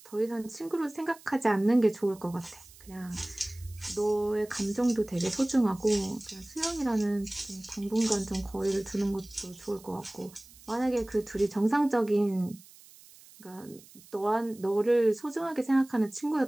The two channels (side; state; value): right; noise; hiss, 23 dB below the sound